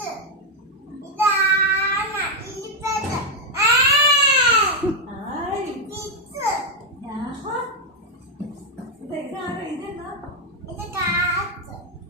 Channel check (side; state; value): both; normal; correlation 0.01